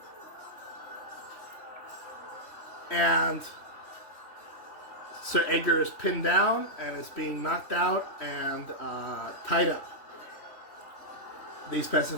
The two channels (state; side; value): late; right; 3.4 ms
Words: And Sir Edgar is pinned down and is being knocked out and tied up. These